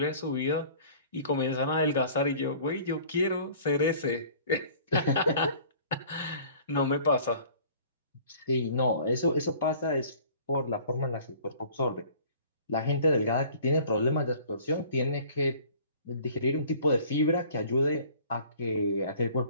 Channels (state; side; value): inverted; both; correlation -0.50